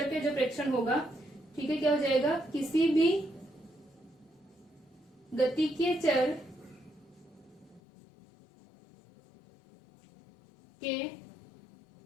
के जो प्रेक्षण होगा, ठीक है, क्या हो जाएगा, किसी भी गतिकीय चर के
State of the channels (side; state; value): right; drops out; at 7.8 s